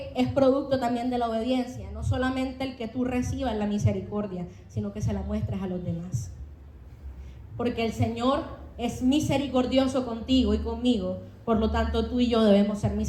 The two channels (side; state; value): both; identical; correlation 1.00